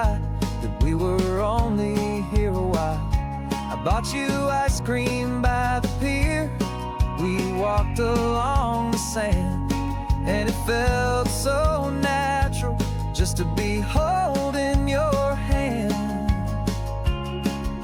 that we were only here a while. I bought you ice cream by the pier, we walked along the sand, and it felt so natural just to be holding your hand.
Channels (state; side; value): identical; both; correlation 1.00